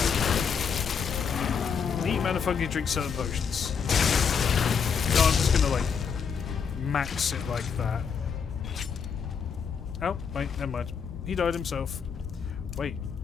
Neat mana fungi drink certain potions. No, I'm just gonna like max it like that. Oh, wait, never mind. He died himself. Wait.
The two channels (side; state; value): right; quieter; 6.5 dB